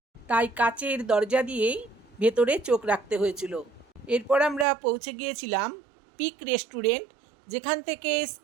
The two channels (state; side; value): drops out; left; at 4.7 s